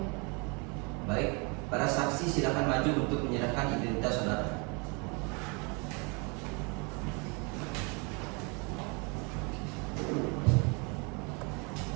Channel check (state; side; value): quieter; left; 31.7 dB